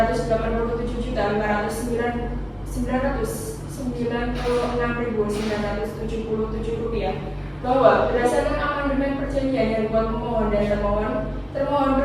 rupiah. Bahwa berdasarkan amandemen perjanjian yang dibuat pemohon dan termohon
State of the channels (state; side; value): identical; both; correlation 1.00